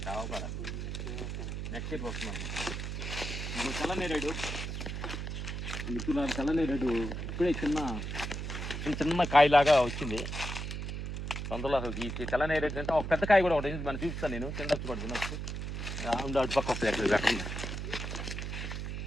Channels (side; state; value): right; noise; hum, 4 dB below the sound